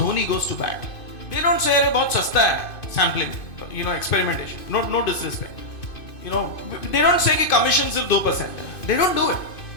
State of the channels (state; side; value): late; right; 2.5 ms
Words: goes to bat. They don't say about sasta hai, sampling, experimentation. No disrespect. They don't say ki commission sirf 2%. They don't do it.